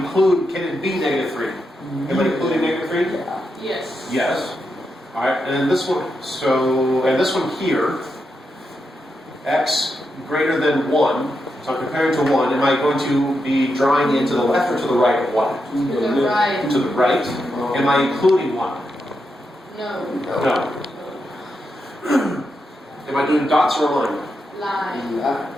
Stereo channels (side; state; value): both; normal; correlation 0.85